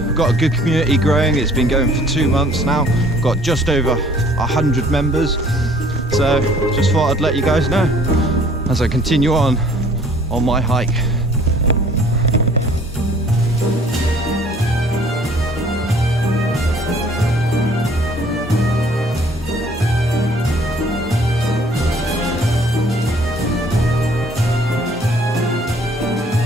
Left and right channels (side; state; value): both; normal; correlation 0.56